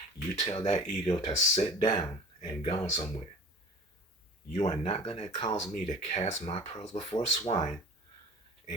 you tell that ego to sit down and go somewhere. You are not going to cause me to cast my pearls before swine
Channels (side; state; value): both; normal; correlation 0.42